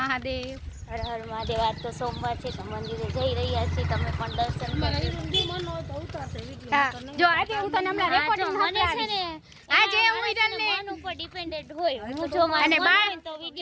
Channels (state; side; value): identical; both; correlation 1.00